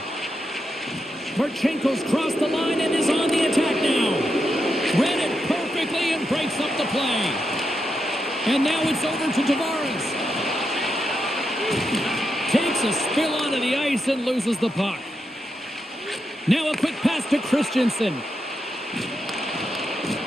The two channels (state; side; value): normal; both; correlation 0.85